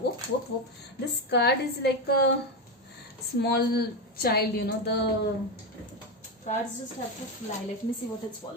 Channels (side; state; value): both; normal; correlation 0.12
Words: Whoop. This card is like a small child, the cards just have to fly. Let me see what has